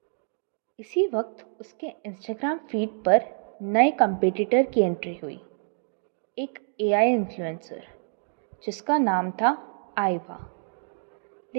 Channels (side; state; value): left; silent; 60 dB below the other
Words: इसी वक्त उसके इंस्टाग्राम फीड पर नए कंपटीटर की एंट्री हुई, एक एआई इन्फ्लुएंसर जिसका नाम था आइवा।